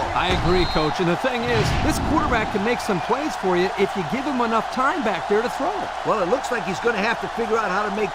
I agree, Coach. And the thing is, this quarterback can make some plays for you if you give him enough time back there to throw it. Well, it looks like he's going to have to figure out how to make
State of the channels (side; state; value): both; identical; correlation 1.00